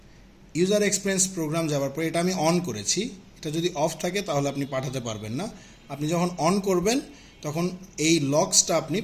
User experience program যাওয়ার পরে এটা আমি অন করেছি। এটা যদি অফ থাকে তাহলে আপনি পাঠাতে পারবেন না। আপনি যখন অন করবেন তখন এই লক্সটা আপনি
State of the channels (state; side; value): identical; both; correlation 1.00